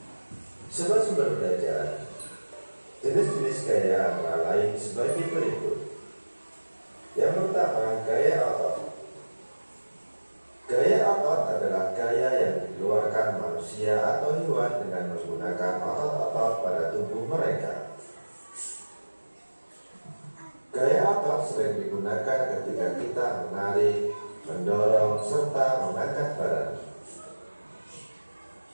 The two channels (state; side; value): inverted; both; correlation -1.00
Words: Sobat sumber belajar, jenis-jenis gaya antara lain sebagai berikut. Yang pertama, gaya otot. Gaya otot adalah gaya yang dikeluarkan manusia atau hewan dengan menggunakan otot-otot pada tubuh mereka. Gaya otot sering digunakan ketika kita menarik, mendorong, serta mengangkat barang.